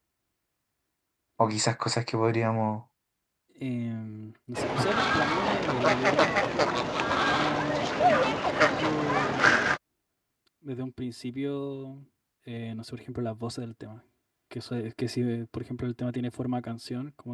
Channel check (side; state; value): both; identical; correlation 1.00